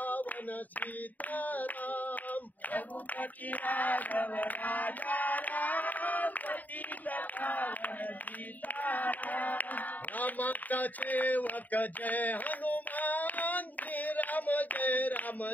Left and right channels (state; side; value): late; right; 0.081 ms